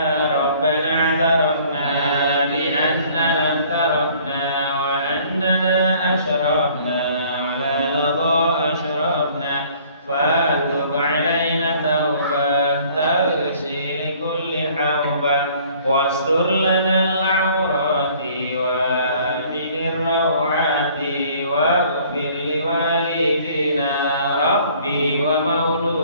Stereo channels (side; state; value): both; inverted; correlation -0.56